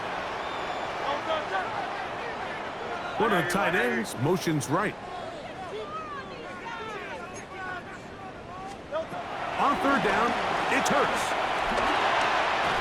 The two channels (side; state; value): both; identical; correlation 1.00